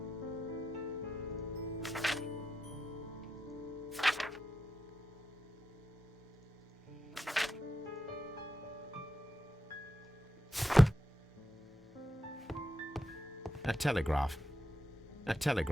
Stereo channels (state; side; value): normal; both; correlation 0.88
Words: A telegraph. A